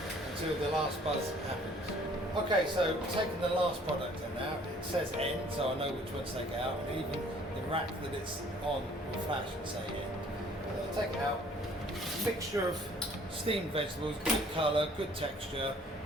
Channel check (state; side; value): normal; both; correlation 0.56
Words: until the last buzz happens. Okay, so taking the last product in now, it says end, so I know which one to take out, and even the rack that it's on will flash and say end. I'll take it out. Mixture of steamed vegetables, good colour, good texture,